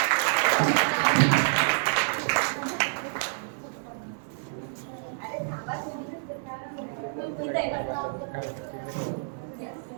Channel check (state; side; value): silent; left; digital silence